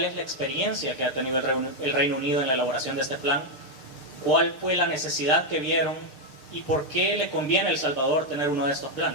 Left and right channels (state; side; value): late; right; 6.7 ms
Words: es la experiencia que ha tenido el Reino Unido en la elaboración de este plan, cuál fue la necesidad que vieron y por qué le conviene a El Salvador tener uno de estos